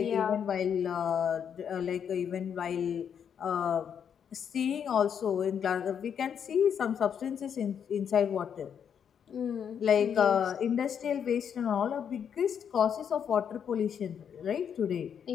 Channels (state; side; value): quieter; right; 7.9 dB